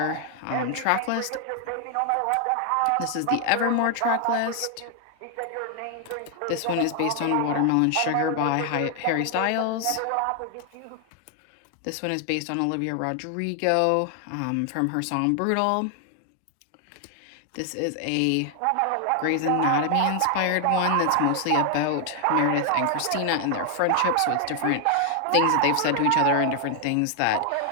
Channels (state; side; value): different; both; correlation 0.00